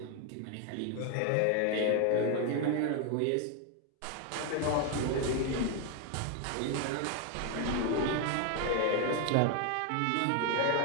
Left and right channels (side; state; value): both; different; correlation 0.01